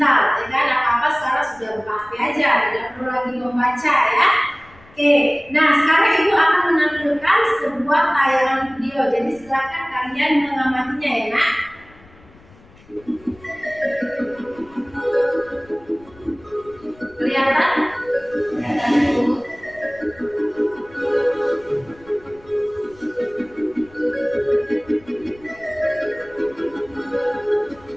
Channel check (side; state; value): left; noise; rumble, 26 dB below the sound